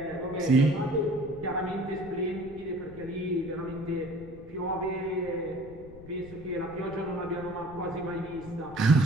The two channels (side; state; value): left; noise; rumble, 17 dB below the sound